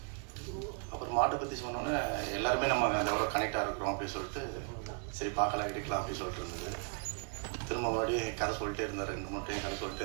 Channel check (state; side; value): quieter; left; 38.8 dB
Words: அப்புறம் மாட்டை பற்றி சொன்னோன்னே எல்லாருமே நம்ம எவ்வளோ கனெக்டாக இருக்கிறோம் அப்படின்னு சொல்லிட்டு சரி பார்க்கலாம் எடுக்கலாம் அப்படின்னு சொல்லிட்டு இருந்தது. திரும்ப மறுபடியும் கதை சொல்லிட்டே இருந்தார். 2 மூட்டையும் கதை